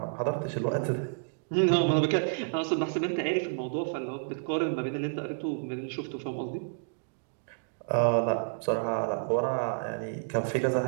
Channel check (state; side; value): silent; left; digital silence